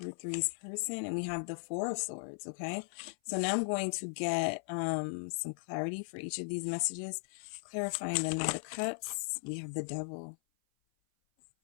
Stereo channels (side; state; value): right; silent; 53 dB below the other